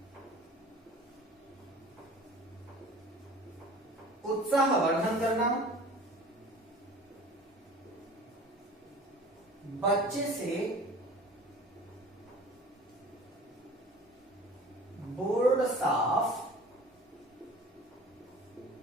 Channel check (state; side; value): normal; both; correlation 0.43